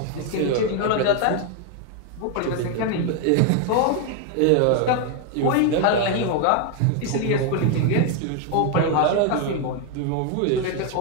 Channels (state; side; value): different; both; correlation 0.01